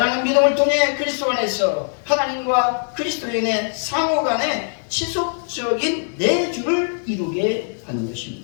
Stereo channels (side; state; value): right; silent; 65 dB below the other